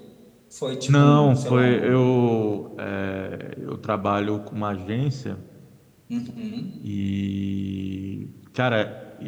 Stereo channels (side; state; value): both; identical; correlation 1.00